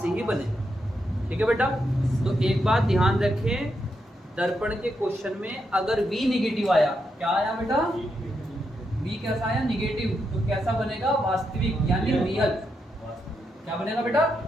ही बनेगा। ठीक है बेटा, तो एक बात ध्यान रखें, दर्पण के क्वेश्चन में अगर V निगेटिव आया, क्या आया बेटा, V कैसा आया, निगेटिव, तो कैसा बनेगा, वास्तविक यानी रियल। क्या बनेगा बेटा,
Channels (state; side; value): normal; both; correlation 0.82